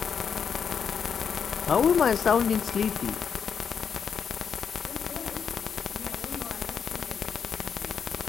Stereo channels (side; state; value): right; quieter; 6.9 dB